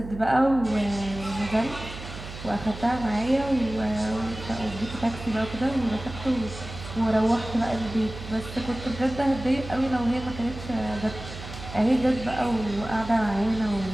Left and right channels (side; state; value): right; noise; hum, 11 dB below the sound